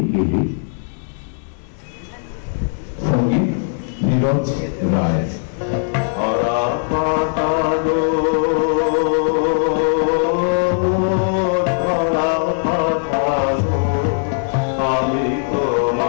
গেলে। সঙ্গীত নীরজ রায়।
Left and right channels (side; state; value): right; silent; digital silence